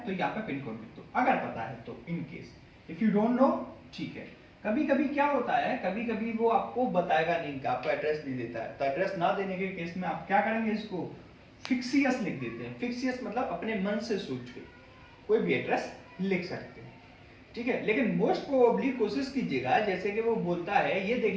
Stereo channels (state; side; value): identical; both; correlation 1.00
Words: तो यहाँ पे पिन कोड लिख दो, अगर पता है तो, in case if you don't know, ठीक है। कभी कभी क्या होता है, कभी कभी वो आपको बताएगा नहीं, आपको एड्रेस नहीं देता है, तो एड्रेस ना देने के केस में आप क्या करेंगे, इसको फिक्सियस लिख देते हैं। फिक्सियस मतलब अपने मन से सोच के कोई भी एड्रेस लिख सकते हैं, ठीक है। लेकिन मोस्ट प्रोबेबली कोशिश कीजिएगा, जैसे कि वो बोलता है, ये देख